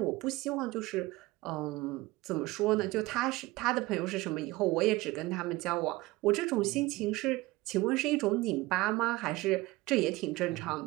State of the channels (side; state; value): left; quieter; 20.0 dB